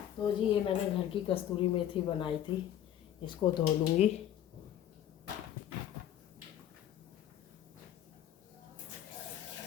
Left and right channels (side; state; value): right; quieter; 11.1 dB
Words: तो जी ये मैंने घर की कस्तूरी मेथी बनाई थी, इसको धो लूँगी।